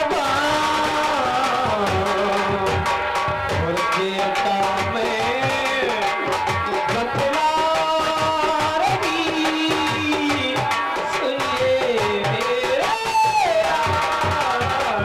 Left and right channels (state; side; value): identical; both; correlation 1.00